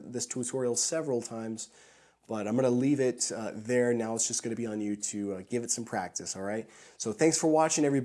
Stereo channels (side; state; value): both; identical; correlation 1.00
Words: tutorial several times. But I'm going to leave it there. Now it's just going to be on you to give it some practice, all right? So thanks for watching,